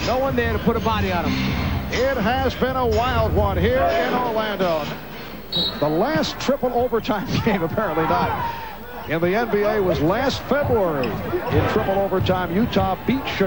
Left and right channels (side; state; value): both; identical; correlation 1.00